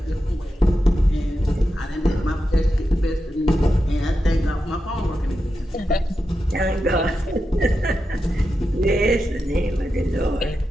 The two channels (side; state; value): both; normal; correlation 0.89